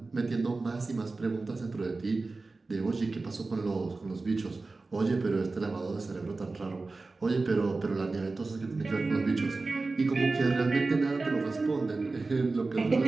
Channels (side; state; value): left; quieter; 3.6 dB